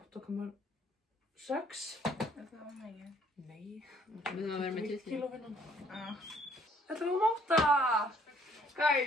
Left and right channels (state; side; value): normal; both; correlation 0.62